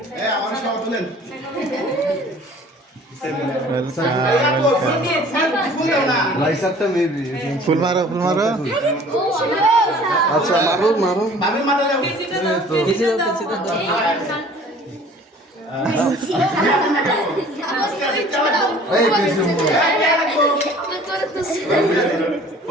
ফুল মারো ফুল মারো। আচ্ছা মারো মারো পিছিয়ে দাও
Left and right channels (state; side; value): normal; both; correlation 0.50